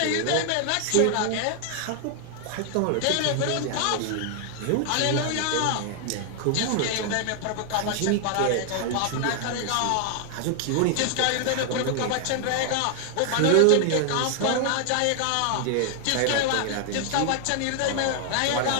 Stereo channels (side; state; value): both; different; correlation 0.00